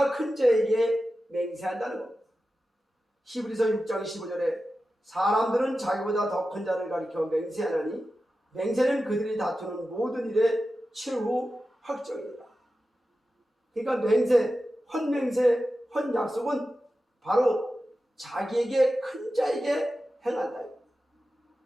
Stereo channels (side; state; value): both; normal; correlation 0.93